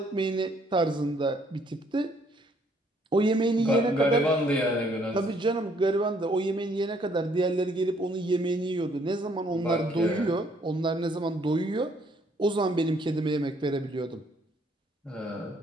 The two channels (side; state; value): both; normal; correlation 0.66